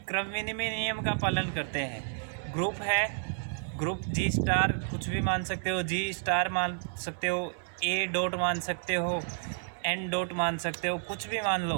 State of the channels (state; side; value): silent; left; digital silence